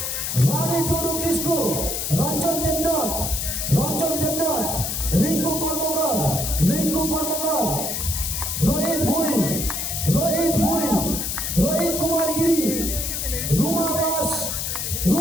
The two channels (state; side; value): noise; left; hiss, 2 dB below the sound